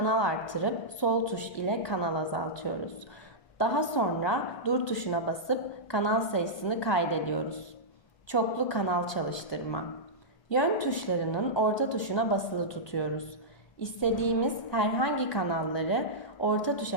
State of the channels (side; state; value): right; late; 1.2 ms